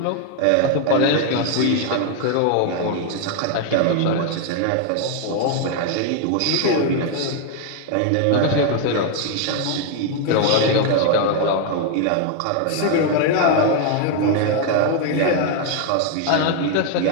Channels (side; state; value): both; different; correlation 0.00